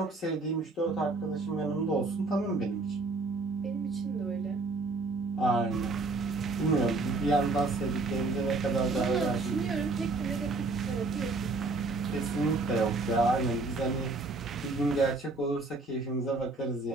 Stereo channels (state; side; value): quieter; left; 3.4 dB